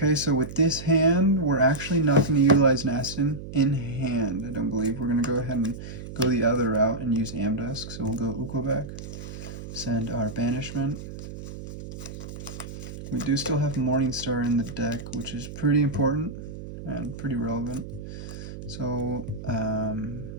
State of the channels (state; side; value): noise; right; hum, 11 dB below the sound